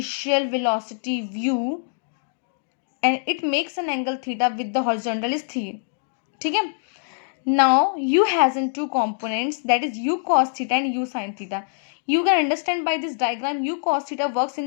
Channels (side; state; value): right; silent; digital silence